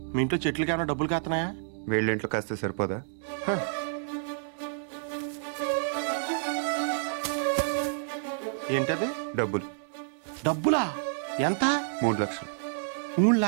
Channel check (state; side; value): silent; left; digital silence